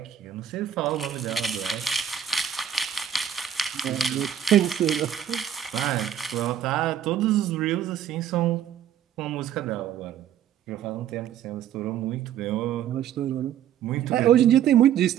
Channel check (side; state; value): left; quieter; 9.9 dB